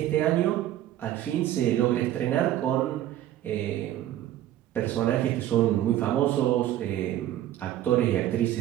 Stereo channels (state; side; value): quieter; left; 12.7 dB